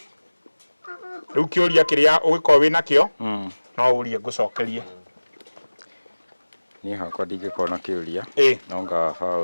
riu kiuria kiria ugikorwo wina kio no urie ngucokerie ni hakwa ndingĩkorwo na kĩũria nonga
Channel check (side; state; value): both; inverted; correlation -1.00